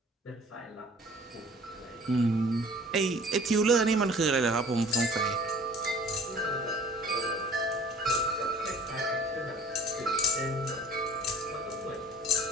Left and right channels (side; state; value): both; normal; correlation 0.50